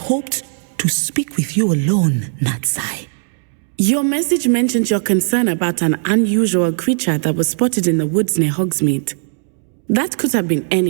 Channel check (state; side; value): silent; left; 68 dB below the other